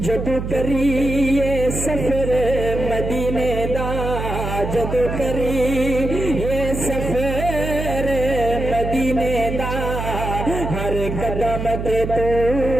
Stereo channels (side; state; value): right; noise; hum, 5 dB below the sound